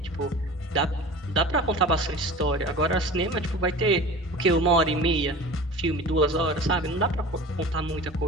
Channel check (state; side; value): normal; both; correlation 0.37